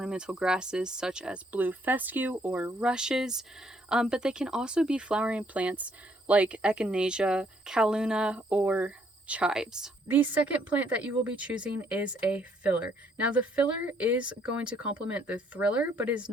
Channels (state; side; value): normal; both; correlation 0.68